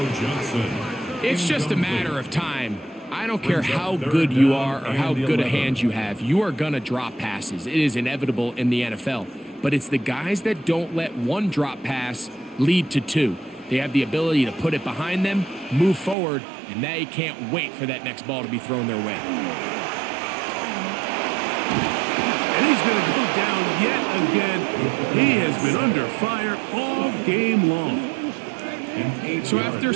It's just a matter of time. I don't care how good you are or how good a hand you have. You are going to drop passes. It is inevitable in the NFL. But it's the guys that don't let one drop pass lead to two. They have the ability to put it behind them, move forward, and they can't wait for that next ball to be thrown their way. And he's going to go down yet again. He has been under fire all game long. So after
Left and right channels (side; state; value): left; drops out; at 16.2 s